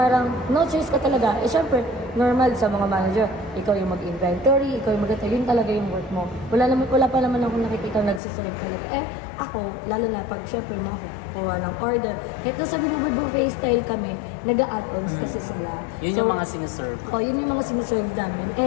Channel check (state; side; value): drops out; right; at 8.2 s